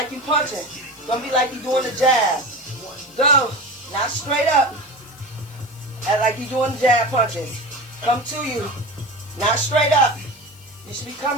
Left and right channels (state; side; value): noise; left; hiss, 23 dB below the sound